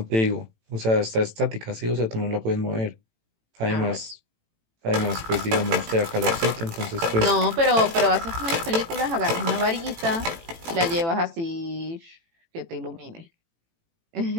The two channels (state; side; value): late; left; 18 ms